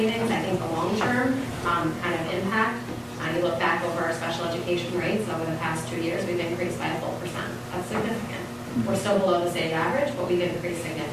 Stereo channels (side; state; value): both; identical; correlation 1.00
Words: I think the long-term kind of impact, you look back over our special education rates over the past 2 years, we've increased by a full percent. That's significant. We're still below the state average, but we've increased